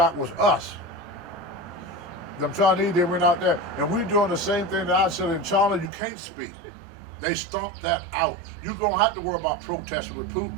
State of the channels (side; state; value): left; drops out; at 5.9 s